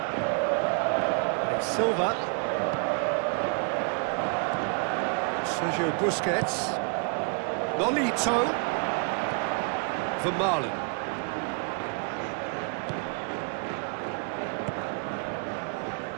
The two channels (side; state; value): left; quieter; 38.9 dB